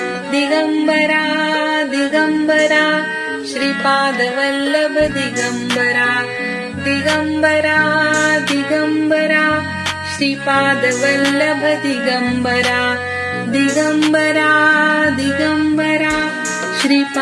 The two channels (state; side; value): identical; both; correlation 1.00